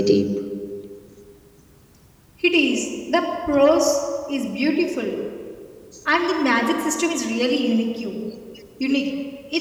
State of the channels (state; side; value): identical; both; correlation 1.00